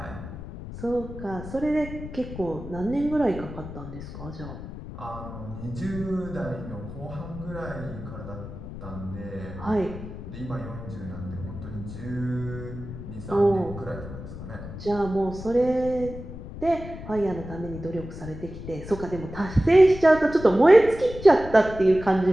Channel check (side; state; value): left; noise; rumble, 11 dB below the sound